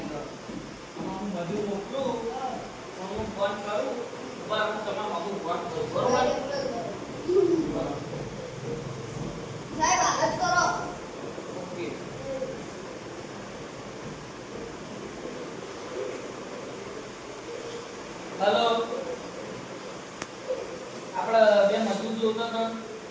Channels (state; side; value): identical; both; correlation 1.00